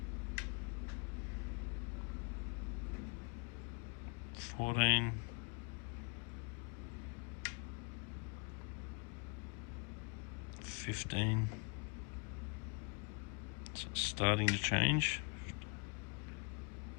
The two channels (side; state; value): right; quieter; 35.5 dB